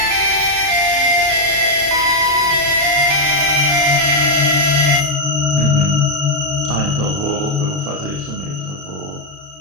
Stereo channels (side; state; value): left; late; 33 ms